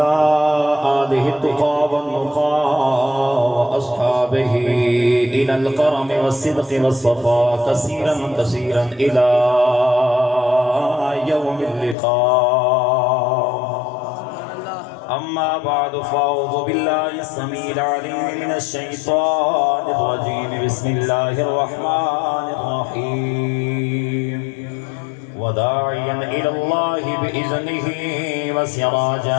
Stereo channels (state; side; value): drops out; right; at 12.0 s